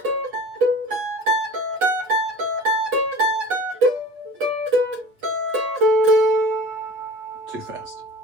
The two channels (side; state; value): left; late; 8.3 ms